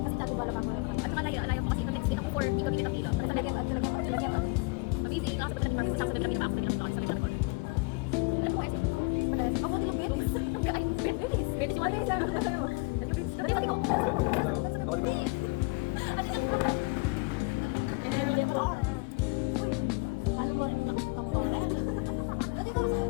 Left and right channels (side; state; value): right; quieter; 28.2 dB